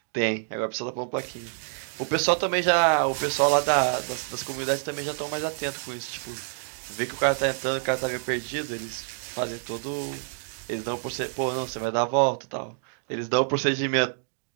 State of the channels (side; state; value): left; silent; digital silence